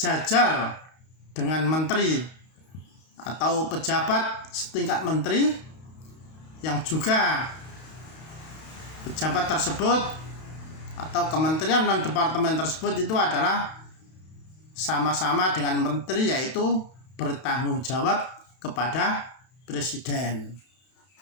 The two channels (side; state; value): right; late; 32 ms